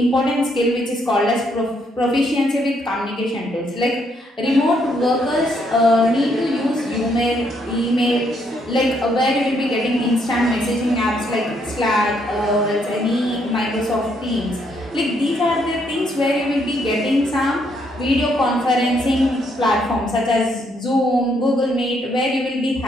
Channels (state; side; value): normal; both; correlation 0.73